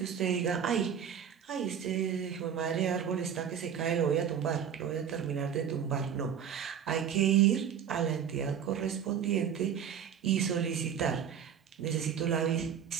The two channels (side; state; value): left; quieter; 8.3 dB